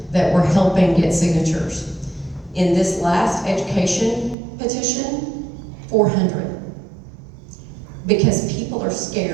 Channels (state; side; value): drops out; left; at 4.4 s